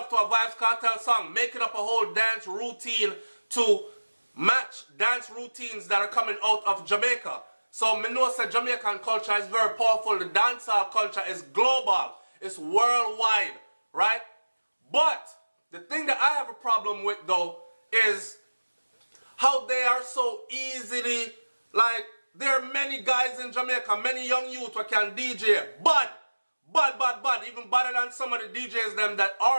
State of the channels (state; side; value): inverted; both; correlation -1.00